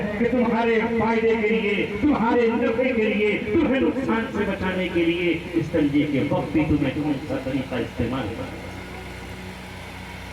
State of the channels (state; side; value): identical; both; correlation 1.00